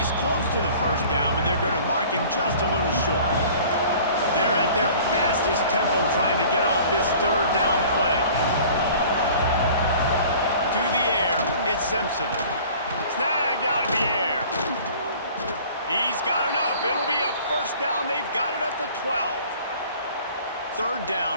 close to the first down, but they're going to mark him just a little short. They're at their fastest tempo trying to get off this 3rd down play. To the air, it's Simpson. Snagged out of the air. He's got enough. It'll be a first down. They've got it at the 12. 3rd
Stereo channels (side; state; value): both; inverted; correlation -0.48